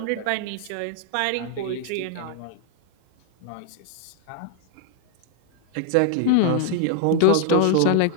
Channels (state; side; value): different; both; correlation 0.00